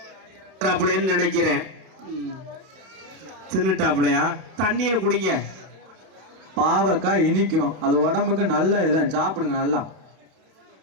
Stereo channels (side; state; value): left; late; 32 ms